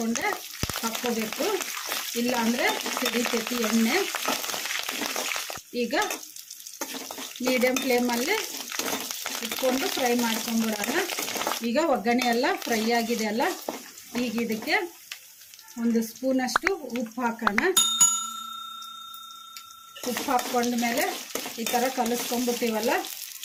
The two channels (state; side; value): identical; both; correlation 1.00